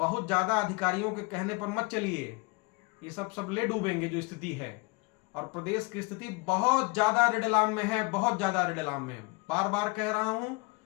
ज्यादा अधिकारियों के कहने पर मत चलिए, ये सब ले डूबेंगे जो स्थिति है। और प्रदेश की स्थिति बहुत ज्यादा रेडलाम में है, बहुत ज्यादा रेडलाम में। बार बार कह रहा हूं,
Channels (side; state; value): right; quieter; 27.5 dB